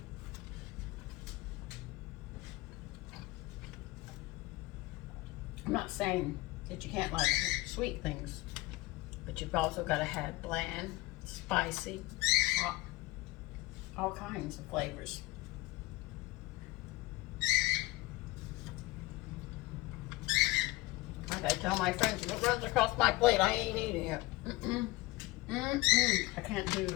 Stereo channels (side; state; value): right; quieter; 20.5 dB